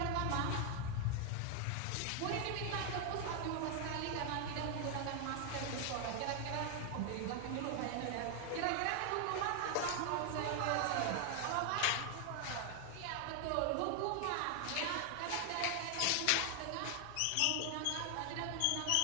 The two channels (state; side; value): different; both; correlation 0.00